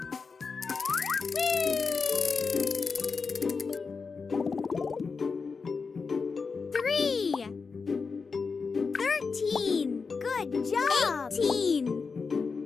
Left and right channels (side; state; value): right; quieter; 4.9 dB